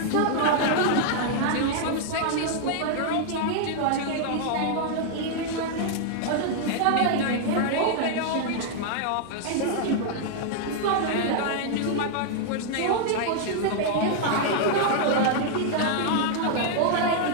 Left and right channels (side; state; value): both; different; correlation -0.01